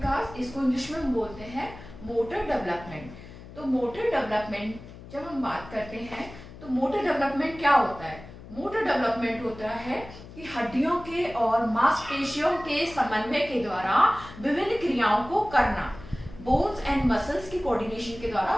इसको इंग्लिश में हम बोलते हैं मोटर डेवलपमेंट। तो मोटर डेवलपमेंट जब हम बात करते हैं तो मोटर डेवलपमेंट क्या होता है? मोटर डेवलपमेंट होता है कि हड्डियों के और मांसपेशियों के समन्वय के द्वारा विभिन्न क्रियाओं को करना, बोन्स एंड मसल्स की कोऑर्डिनेशन के द्वारा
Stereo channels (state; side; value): noise; left; hum, 16 dB below the sound